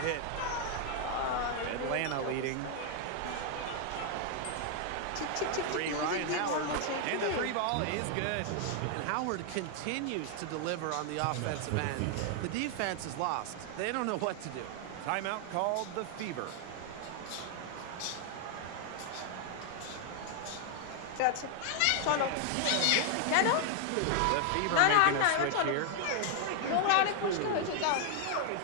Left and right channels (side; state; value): both; different; correlation 0.00